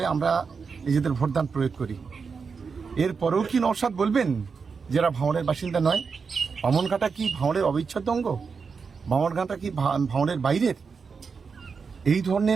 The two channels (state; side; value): quieter; left; 5.4 dB